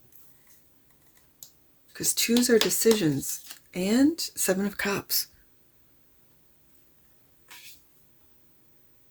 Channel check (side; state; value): both; identical; correlation 1.00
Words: Because twos are decisions. And Seven of Cups.